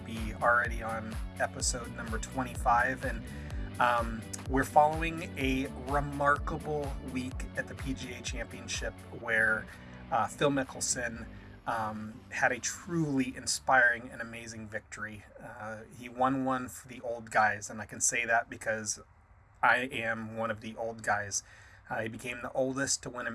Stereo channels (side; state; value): both; identical; correlation 1.00